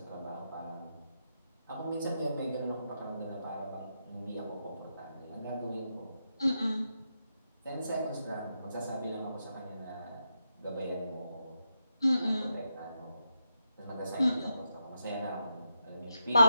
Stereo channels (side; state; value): both; inverted; correlation -0.85